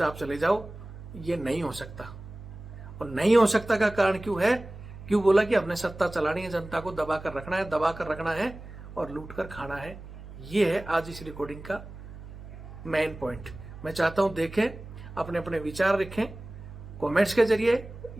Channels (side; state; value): right; noise; hum, 14 dB below the sound